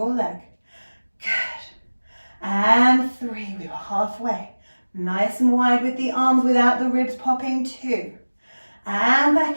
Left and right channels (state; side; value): inverted; both; correlation -1.00